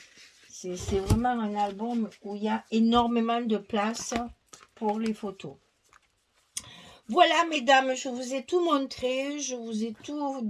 C'est vraiment un album où il y a énormément de place pour les photos. Voilà, mesdames, je vous ai tout montré, je vous ai tout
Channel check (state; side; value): identical; both; correlation 1.00